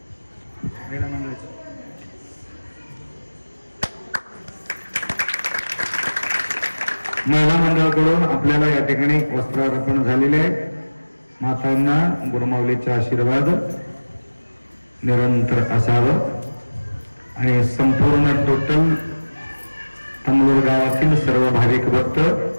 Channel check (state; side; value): inverted; both; correlation -1.00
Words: महिला मंडळाकडून आपल्याला या ठिकाणी वस्त्रार्पण झालेले आहे. मातांना गुरुमाऊलीचे आशीर्वाद निरंतर असावं आणि संपूर्ण टोटल तमलूर गावातील सर्व भाविक भक्त